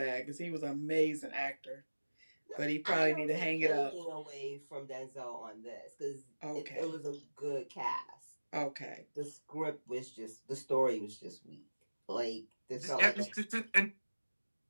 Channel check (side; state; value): both; inverted; correlation -1.00